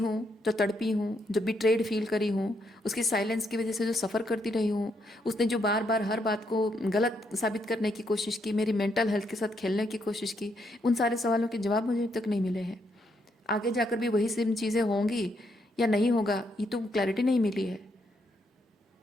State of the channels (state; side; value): normal; both; correlation 0.76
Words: जो तड़पी हूँ, जो बिट्रेड फील करी हूँ, उसकी साइलेंस की वजह से जो सफ़र करती रही हूँ, उसने जो बार बार हर बात को गलत साबित करने की कोशिश की, मेरी मेंटल हेल्थ के साथ खेलने की कोशिश की, उन सारे सवालों के जवाब मुझे अभी तक नहीं मिले हैं। आगे जाकर भी वही सेम चीज़ें होंगी या नहीं होगा, ये तो क्लैरिटी नहीं मिली है,